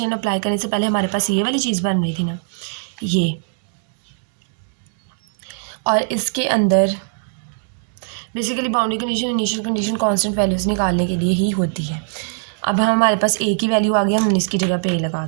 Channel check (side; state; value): left; silent; digital silence